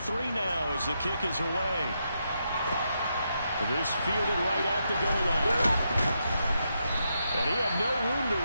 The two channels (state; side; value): inverted; both; correlation -0.82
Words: now as the kick is away. This fielded right at the goal line. And he had no room to